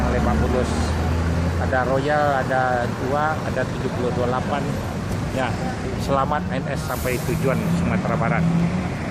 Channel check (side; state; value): both; identical; correlation 1.00